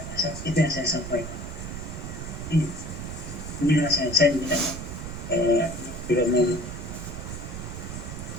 rasa itu yang saya sampaikan. Inilah saya tidak mau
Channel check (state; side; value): noise; right; rumble, 7 dB below the sound